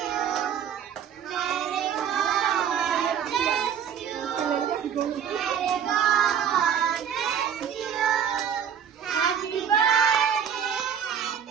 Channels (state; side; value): quieter; left; 8.3 dB